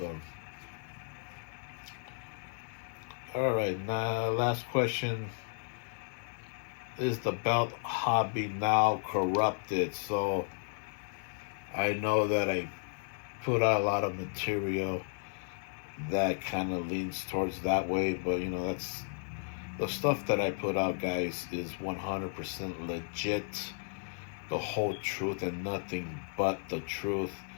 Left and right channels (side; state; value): right; silent; 55 dB below the other